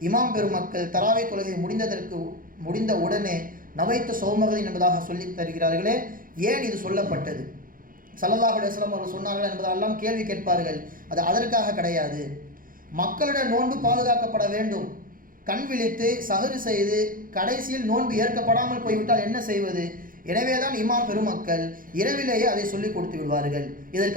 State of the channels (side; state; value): left; late; 0.40 ms